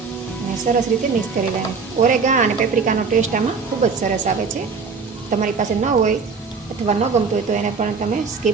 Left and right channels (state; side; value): quieter; left; 5.1 dB